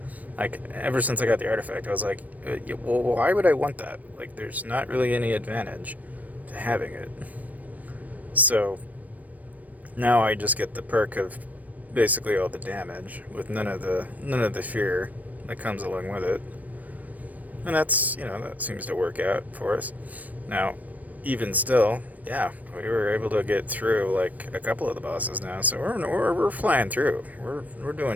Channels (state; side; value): late; left; 0.075 ms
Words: Like, ever since I got the artifact, I was like, well, why would I want that? Like, there's not really any advantage to having it. So now I just get the perk of basically all the damage with none of the fear that comes along with it. And that's, that seems to work out for us. Now, even still, yeah, we were able to get through like a couple of the bosses now, so we're flying through. We're